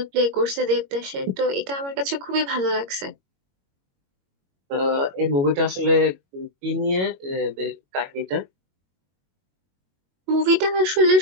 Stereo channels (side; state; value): left; late; 21 ms